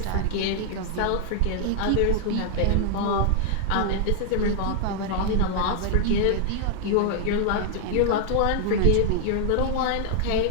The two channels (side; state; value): both; different; correlation 0.00